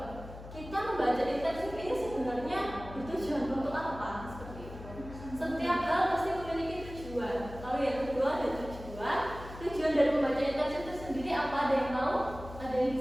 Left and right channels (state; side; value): noise; left; hum, 13 dB below the sound